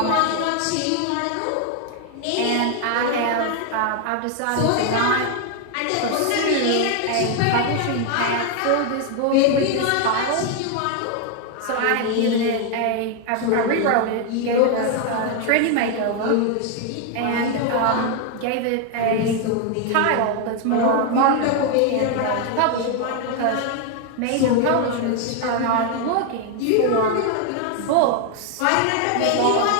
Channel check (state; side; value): different; both; correlation 0.01